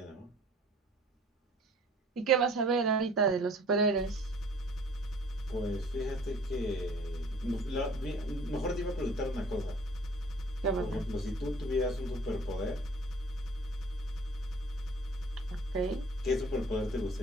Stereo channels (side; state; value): both; normal; correlation 0.51